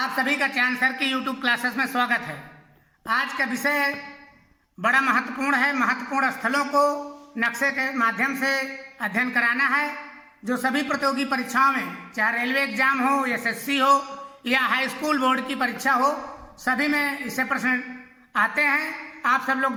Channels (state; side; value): identical; both; correlation 1.00